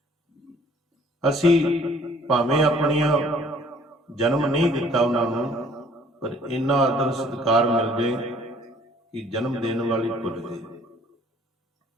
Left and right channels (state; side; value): normal; both; correlation 0.57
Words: ਅਸੀਂ ਭਾਵੇਂ ਆਪਣੀਆਂ ਜਨਮ ਨਹੀਂ ਦਿੱਤਾ ਉਹਨਾਂ ਨੂੰ, ਪਰ ਇੰਨਾ ਆਦਰ ਸਤਿਕਾਰ ਮਿਲ ਜੇ ਕਿ ਜਨਮ ਦੇਣ ਵਾਲੀ ਭੁੱਲ ਗਏ।